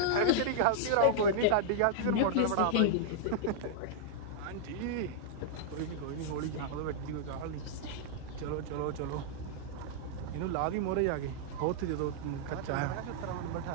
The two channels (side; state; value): both; different; correlation -0.01